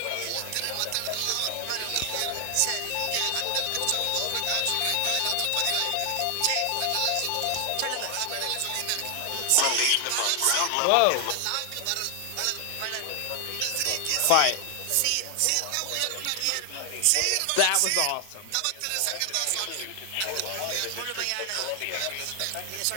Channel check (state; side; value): different; both; correlation 0.00